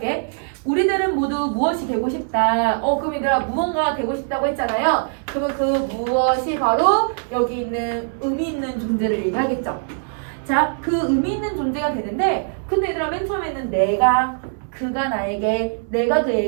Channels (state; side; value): silent; left; 62 dB below the other